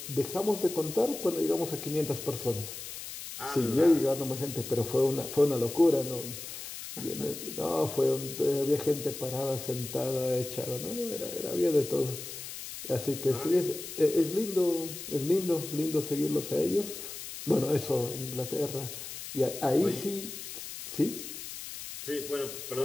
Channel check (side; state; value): left; noise; hiss, 10 dB below the sound